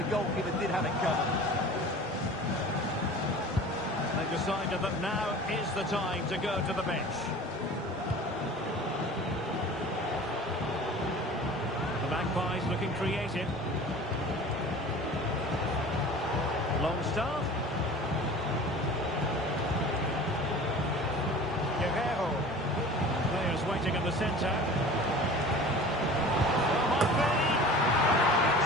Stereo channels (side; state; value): both; normal; correlation 0.40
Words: goalkeeper did have it covered. decided that now is the time to go to the bench. The Magpies looking creative. Long start. Guerrero. Players waiting in the centre. Well, might be.